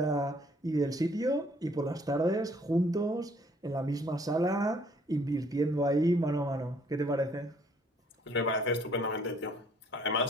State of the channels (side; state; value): both; normal; correlation 0.61